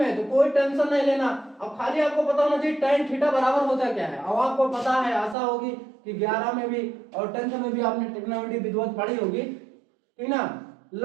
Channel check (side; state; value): left; drops out; at 5.4 s